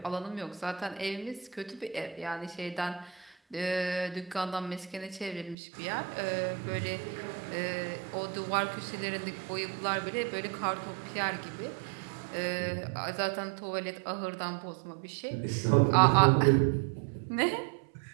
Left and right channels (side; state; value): left; drops out; at 5.6 s